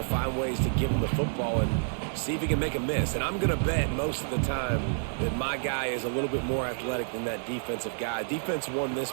to find ways to give him the football and see if he can make a miss. And I'm going to bet most of the time that my guy is a little bit more athletic than that defensive guy. Defense won this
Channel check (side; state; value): left; silent; digital silence